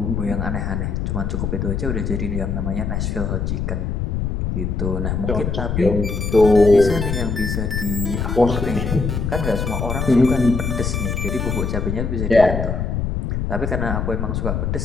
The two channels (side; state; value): left; noise; rumble, 1 dB below the sound